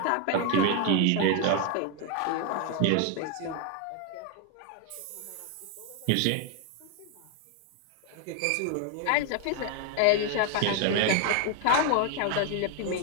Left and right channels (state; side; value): different; both; correlation 0.01